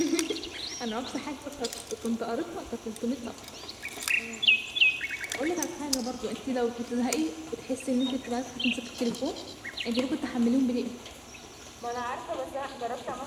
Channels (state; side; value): identical; both; correlation 1.00